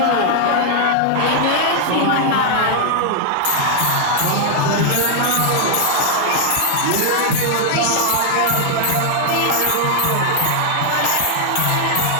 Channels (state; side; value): different; both; correlation 0.00